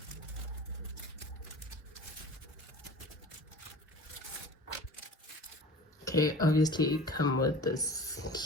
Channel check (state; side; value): normal; both; correlation 0.40